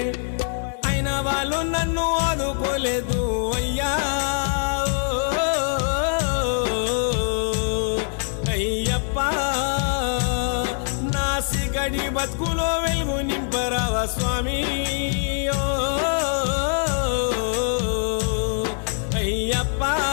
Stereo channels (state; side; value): silent; right; 61 dB below the other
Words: అయినా వాళ్ళు నన్ను ఆదుకోలేదు అయ్యా అయ్యప్ప నా సిగడి బతుకులో వెలుగు నింపరావా స్వామి అయ్యప్ప